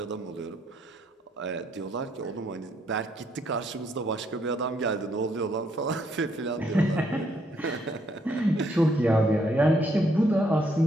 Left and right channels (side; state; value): both; normal; correlation 0.72